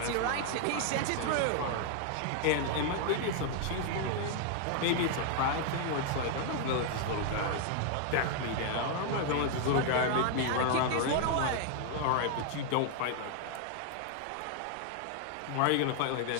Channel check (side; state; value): both; different; correlation 0.00